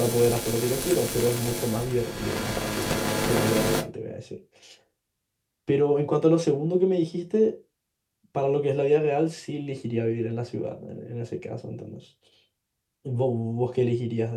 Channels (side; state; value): both; identical; correlation 1.00